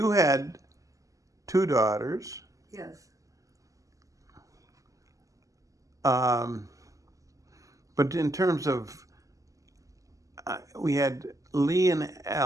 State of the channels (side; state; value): left; late; 0.16 ms